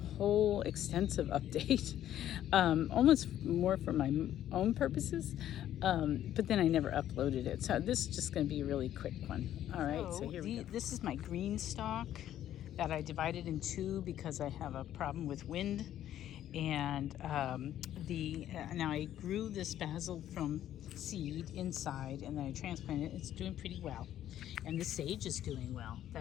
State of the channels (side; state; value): right; quieter; 11.7 dB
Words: extensive update, almost more for my own purposes, but then I never uploaded it. So this is just going to be a really quick one. All right, so here we go. This is my green stalk that I divided in two because I have a problem with wind. And now I grew this basil from seed inside, and then I transplanted it. It's doing pretty well, and the sage is doing well.